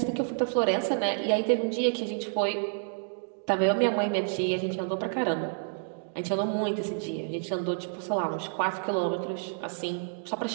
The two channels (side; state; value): left; silent; digital silence